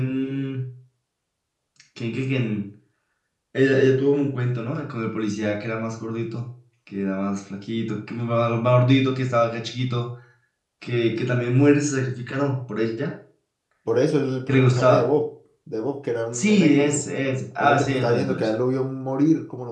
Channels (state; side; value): identical; both; correlation 1.00